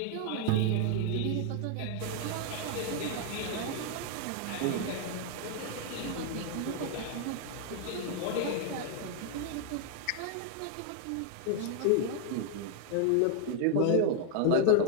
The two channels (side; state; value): both; different; correlation 0.00